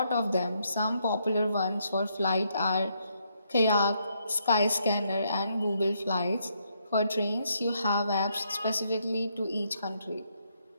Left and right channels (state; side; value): inverted; both; correlation -0.75